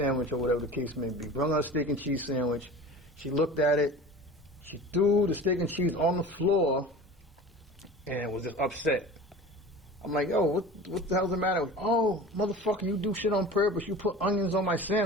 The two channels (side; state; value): both; normal; correlation 0.37